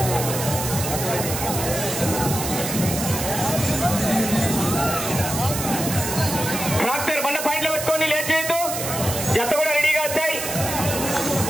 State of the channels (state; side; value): noise; right; hiss, 4 dB below the sound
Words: ట్రాక్టర్ బండ పాయింట్లు పెట్టుకొని లేట్ చేయొద్దు. జత కూడా రెడీగా వచ్చాయి.